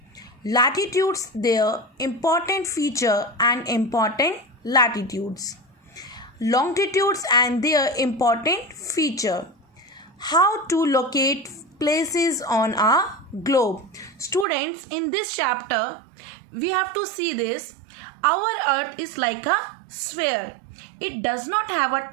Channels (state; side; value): drops out; left; at 14.5 s